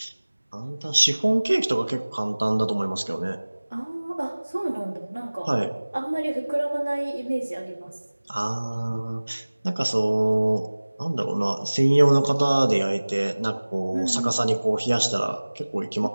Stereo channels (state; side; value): inverted; both; correlation -1.00